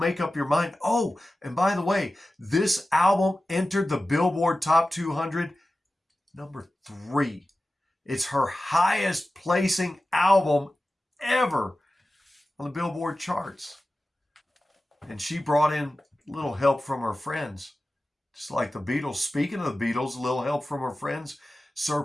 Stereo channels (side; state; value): both; normal; correlation 0.95